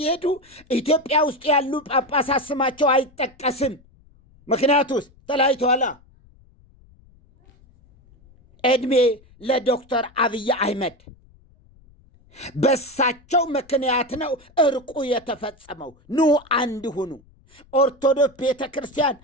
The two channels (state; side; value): noise; left; rumble, 28 dB below the sound